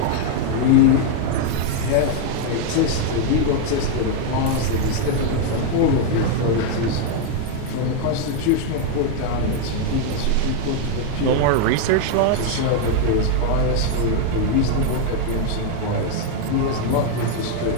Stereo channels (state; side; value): different; both; correlation 0.00